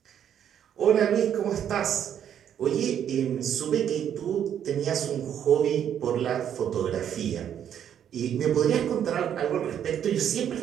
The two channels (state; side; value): quieter; left; 9.4 dB